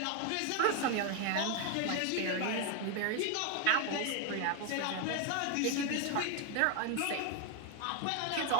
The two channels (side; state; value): both; different; correlation 0.01